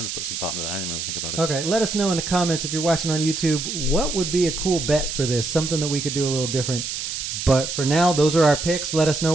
to put some thought into that. I didn't really think about it. Okay, let us know in the comments if you're watching on YouTube, what would be a cool bet for this? Something that we could do a little different. But for now, those are our picks. Let us know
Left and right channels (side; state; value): right; noise; hiss, 5 dB below the sound